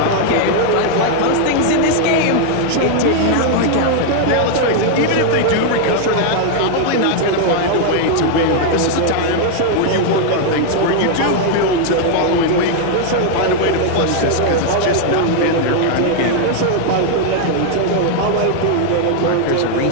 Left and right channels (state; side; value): different; both; correlation 0.00